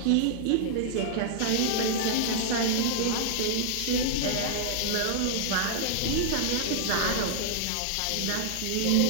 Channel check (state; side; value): different; both; correlation -0.01